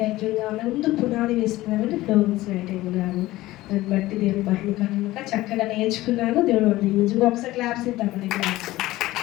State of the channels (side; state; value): right; quieter; 17.4 dB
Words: ముందు పునాది వేసుకున్నారంటే ఫ్లోరెన్స్ నైటింగేల్ గారు. దాన్ని బట్టి దేవుడు మహిమ కనుక చక్కగా నేర్చుకున్నాను. దేవుడు నిజంగా ఒకసారి క్లాప్స్ ఇద్దామండి.